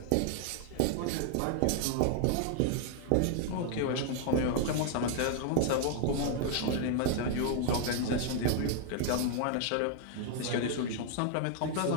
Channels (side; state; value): both; different; correlation 0.00